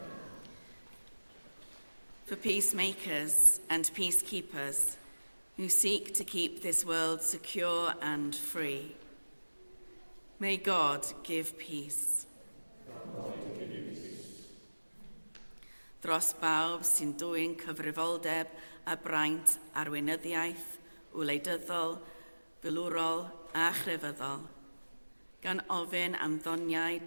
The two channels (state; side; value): inverted; both; correlation -1.00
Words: For peacemakers and peacekeepers who seek to keep this world secure and free, may God give peace. Dros bawb sy'n dwyn cyfrifoldeb a braint arweinyddiaeth, wleidyddol, filwrol a chrefyddol, gan ofyn am ddoniau